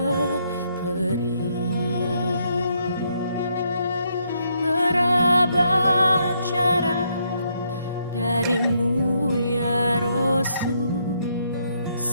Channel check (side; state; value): both; inverted; correlation -0.74